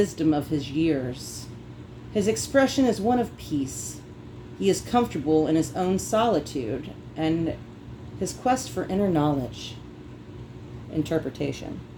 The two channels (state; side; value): identical; both; correlation 1.00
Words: of his years. His expression is one of peace. He is comfortable in his own solitude and his quest for inner knowledge. Interpretation.